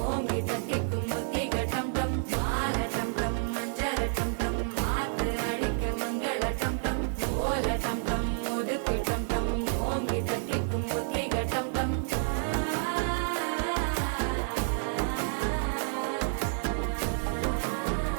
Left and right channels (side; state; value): left; silent; 58 dB below the other